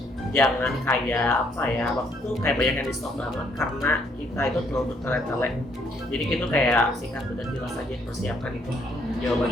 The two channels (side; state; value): both; normal; correlation 0.68